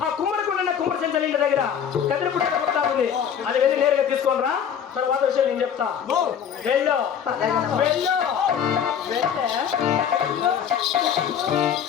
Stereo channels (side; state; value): right; quieter; 8.3 dB